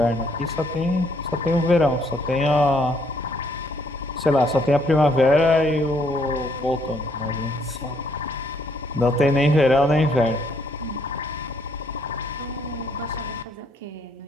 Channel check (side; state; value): both; normal; correlation 0.68